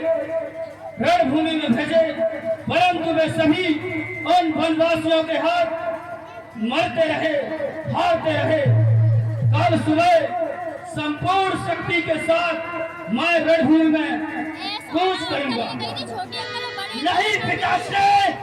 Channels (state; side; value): identical; both; correlation 1.00